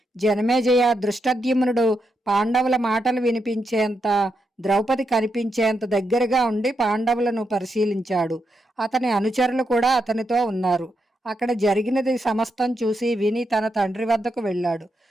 జనమేజయ, దృష్టద్యుమ్నుడు పాండవుల మాటలు వినిపించేంత, ద్రౌపది కనిపించేంత దగ్గరగా ఉండి పాండవులను పరిశీలించాడు. అతని అనుచరులు కూడా అతనితో ఉన్నారు. అక్కడ జరిగినది సమస్తం చూసి విని తన తండ్రి వద్దకు వెళ్ళాడు.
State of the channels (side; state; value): both; normal; correlation 0.83